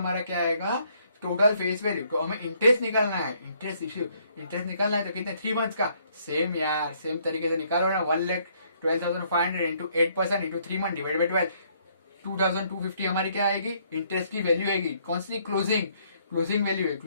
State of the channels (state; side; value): inverted; both; correlation -0.67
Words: क्या आएगा, टोटल फेस वैल्यू। तो हमें इंटरेस्ट निकालना है, इंटरेस्ट निकालना है, तो कितने 3 मंथ्स का, सेम यार, सेम तरीके से निकालो ना। 1,12,500 into 8% into 3 month divide by 12, 2,250 हमारी क्या आएगी, इंटरेस्ट की वैल्यू आएगी। कौन सी, क्लोजिंग वैल्यू है,